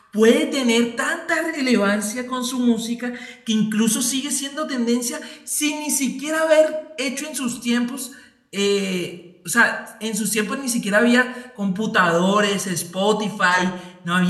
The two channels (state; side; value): identical; both; correlation 1.00